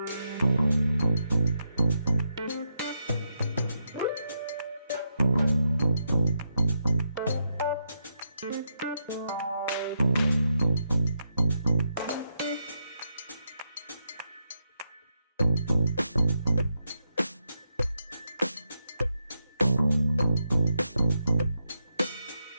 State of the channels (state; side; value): inverted; both; correlation -0.82